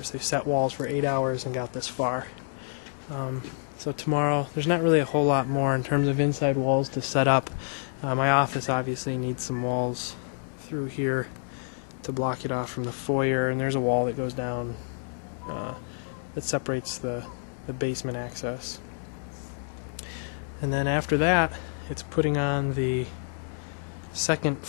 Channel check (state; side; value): silent; right; 59 dB below the other